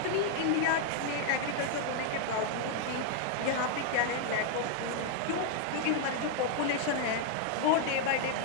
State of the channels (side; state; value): both; different; correlation 0.00